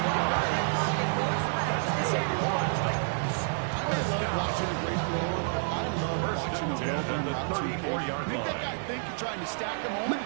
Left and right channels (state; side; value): silent; left; 55 dB below the other